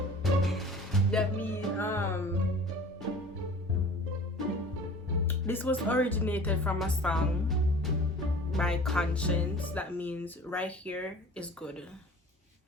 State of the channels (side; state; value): both; normal; correlation 0.44